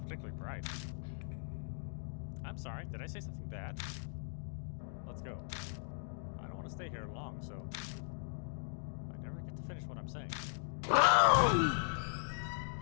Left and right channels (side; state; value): right; silent; digital silence